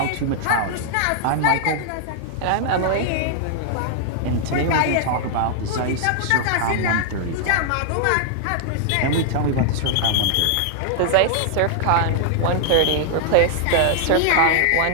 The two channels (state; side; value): different; both; correlation 0.00